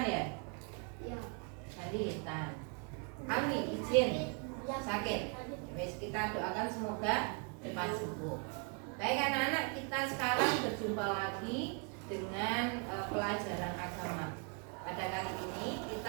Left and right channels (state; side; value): quieter; left; 37.4 dB